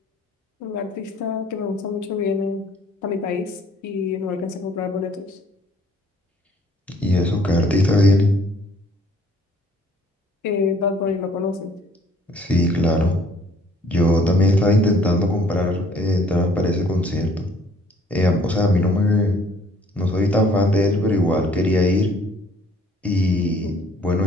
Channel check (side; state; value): both; normal; correlation 0.59